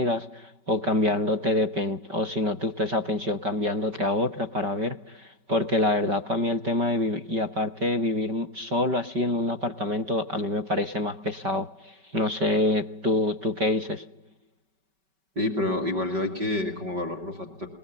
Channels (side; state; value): left; late; 5.2 ms